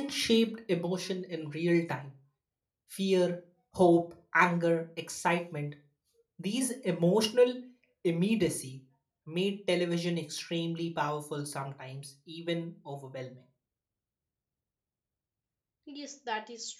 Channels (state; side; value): identical; both; correlation 1.00